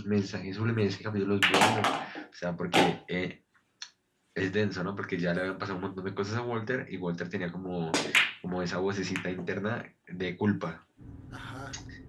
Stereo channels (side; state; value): both; identical; correlation 1.00